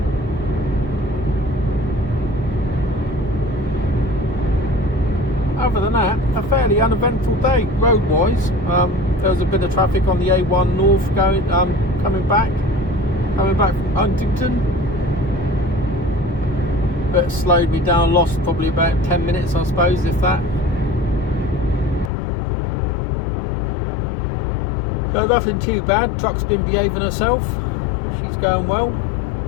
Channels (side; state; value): right; drops out; at 22.1 s